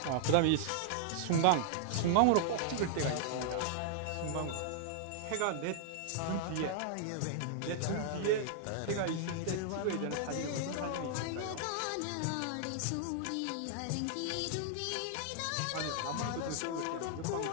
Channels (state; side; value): different; both; correlation -0.01